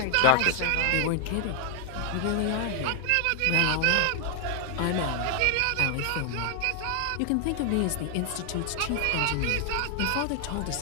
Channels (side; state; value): both; different; correlation 0.00